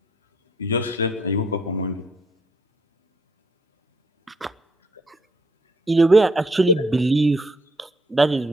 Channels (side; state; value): both; normal; correlation 0.70